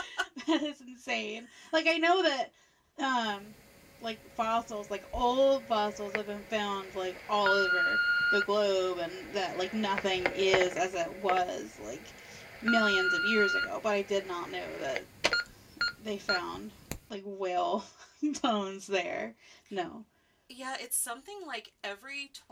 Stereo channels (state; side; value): identical; both; correlation 1.00